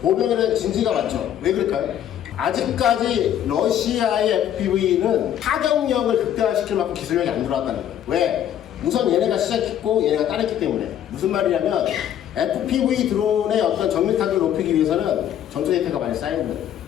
진지가 많죠. 왜 그럴까요? 아직까지 러시아의 FPV는 타격력을 극대화시킬 만큼 기술력이 안 들어왔다는 거예요. 왜? 우선 얘네가 시작했고 얘네가 따랐기 때문에. 무슨 말이냐면 FPV 드론의 어떤 정밀 타격을 높이기 위해서는 전투 데이터가 많이 쌓여야 돼요.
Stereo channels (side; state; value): right; quieter; 10.5 dB